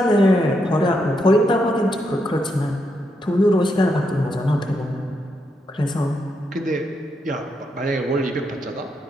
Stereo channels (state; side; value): normal; both; correlation 0.81